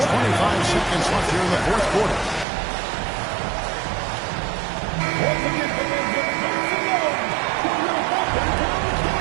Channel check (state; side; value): drops out; left; at 2.5 s